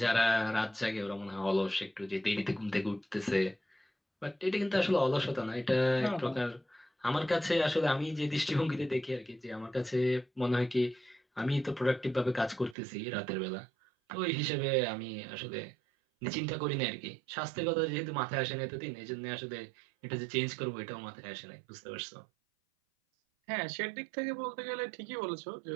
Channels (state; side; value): drops out; left; at 12.8 s